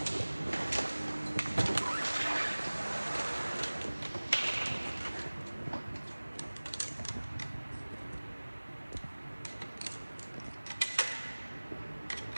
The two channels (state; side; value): inverted; both; correlation -1.00